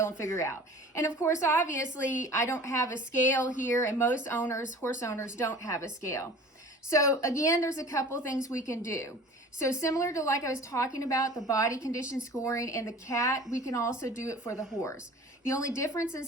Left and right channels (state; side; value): normal; both; correlation 0.43